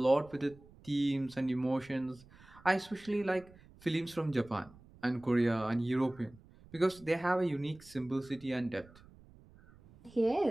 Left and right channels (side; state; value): right; noise; rumble, 24 dB below the sound